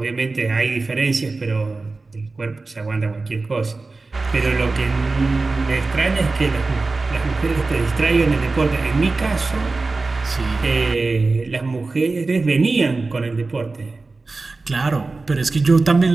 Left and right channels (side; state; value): left; quieter; 3.6 dB